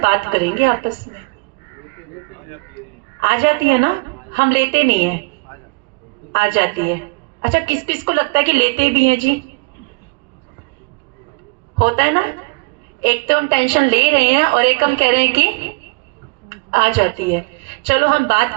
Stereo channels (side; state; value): left; quieter; 30.3 dB